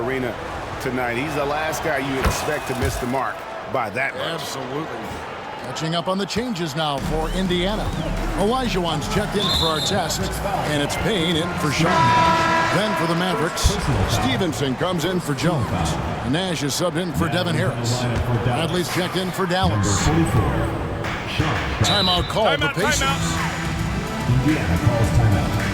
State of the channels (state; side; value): identical; both; correlation 1.00